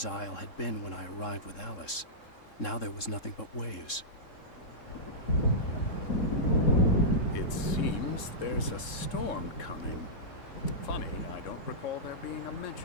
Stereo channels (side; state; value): right; late; 3.7 ms